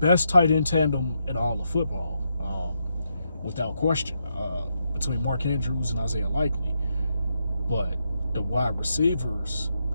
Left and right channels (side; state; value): both; inverted; correlation -0.81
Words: tight end tandem in all of football, without question, between Mark Andrews and Isaiah Likely. But the wide receivers,